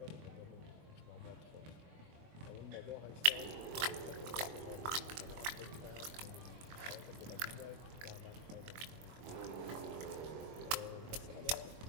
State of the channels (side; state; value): left; late; 22 ms